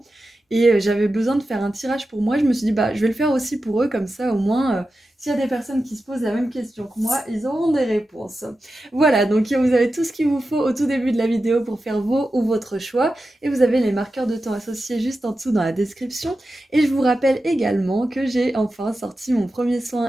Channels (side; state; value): both; normal; correlation 0.92